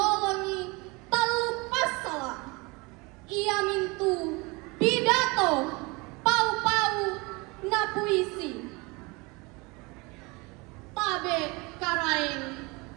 talupas salah ia mintu pidato pau-pau na puisi tabe karaeng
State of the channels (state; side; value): quieter; left; 26.2 dB